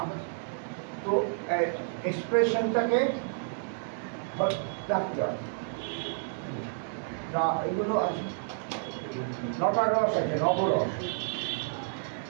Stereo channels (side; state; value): left; silent; digital silence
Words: তো এক্সপ্রেশনটাকে রাখতে হবে। এগুলো আছে, নটা রস আছে, নবরস।